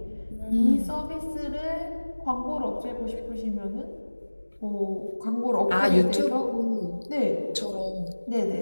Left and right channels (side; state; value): both; inverted; correlation -1.00